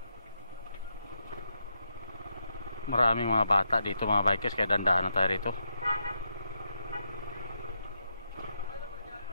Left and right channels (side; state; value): both; inverted; correlation -0.83